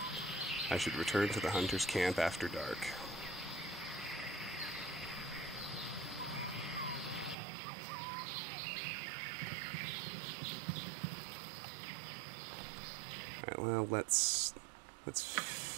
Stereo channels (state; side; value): drops out; left; at 7.4 s